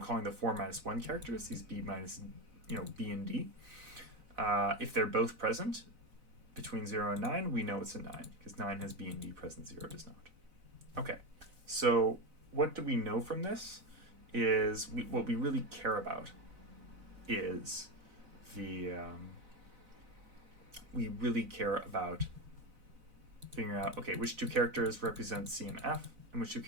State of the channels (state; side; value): late; left; 4.0 ms